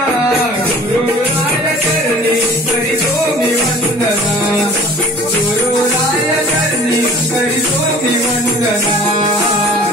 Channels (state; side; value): normal; both; correlation 0.47